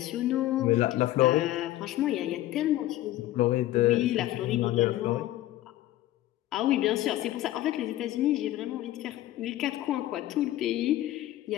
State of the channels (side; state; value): right; quieter; 14.8 dB